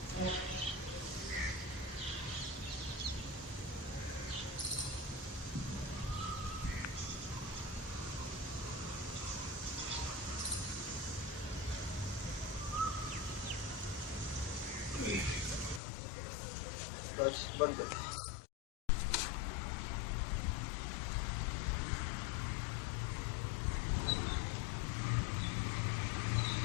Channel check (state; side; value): drops out; right; at 15.8 s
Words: बस बंद कर।